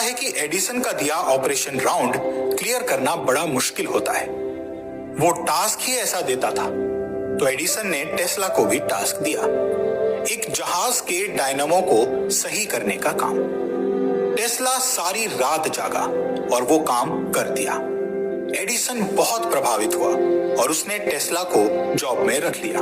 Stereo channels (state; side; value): identical; both; correlation 1.00